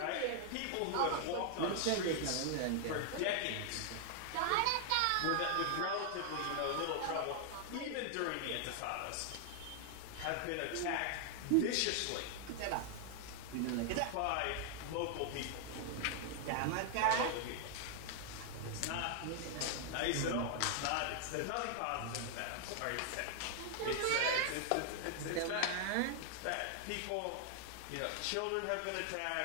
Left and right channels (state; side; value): different; both; correlation 0.00